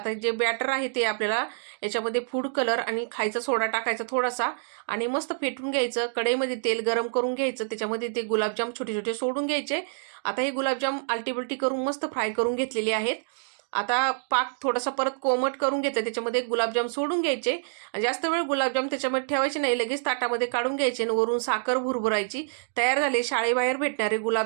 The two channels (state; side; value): silent; left; digital silence